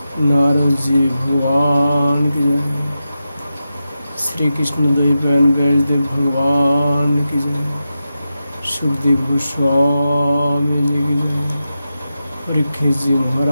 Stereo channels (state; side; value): inverted; both; correlation -0.90